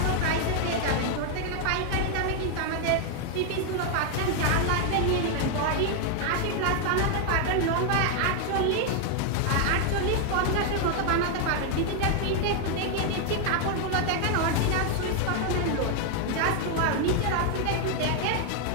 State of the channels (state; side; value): different; both; correlation 0.00